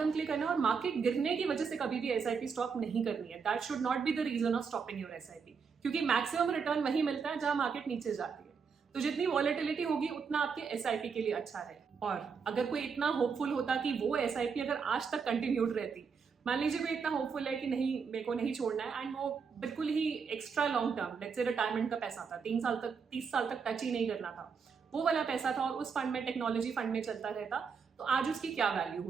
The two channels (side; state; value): left; quieter; 5.8 dB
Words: के लिए करना और मार्केट गिरने की वजह से कभी भी एसआईपी स्टॉप नहीं करनी है। That should not be the reason of stopping your SIP, क्योंकि मैक्सिमम रिटर्न वही मिलता है जहां मार्केट नीचे जाती है। तो जितनी वॉलेटिलिटी होगी उतना आपके एसआईपी के लिए अच्छा है। और अगर कोई इतना होपफुल होता कि वो एसआईपी अगर आज तक कंटिन्यूड रहती, मान लीजिए कोई इतना होपफुल है कि नहीं मेरे को नहीं छोड़ना है, एंड वो बिल्कुल ही extra long term, let's say retirement का पैसा था, 3 साल तक 30 साल तक टच ही नहीं करना था, वो वाला पैसा था और उस फंड में, टेक्नोलॉजी फंड में चलता रहता, तो आज उसकी क्या वैल्यू